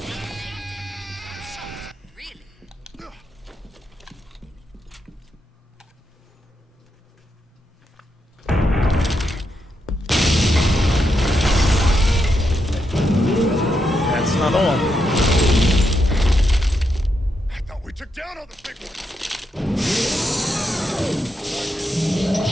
That's not all. I thought we took down all the big ones.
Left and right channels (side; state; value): both; normal; correlation 0.83